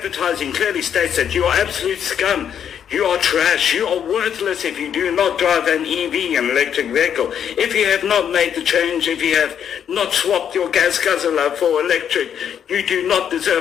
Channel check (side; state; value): right; quieter; 8.7 dB